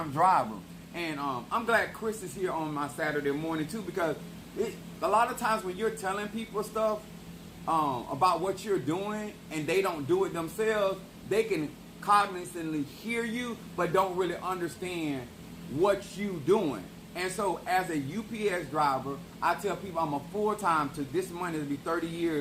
driver, and I'm glad Chris is here on my Saturday morning too, because a lot of times when you're telling people stuff about what you're doing and they don't do it themselves, they can cognitively hear you but don't really understand what you doing. And so as a UPS driver, I tell people I'm a full-time to this month. It'll be 30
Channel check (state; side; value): identical; both; correlation 1.00